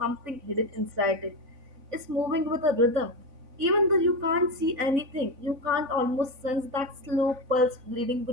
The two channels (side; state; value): left; late; 4.0 ms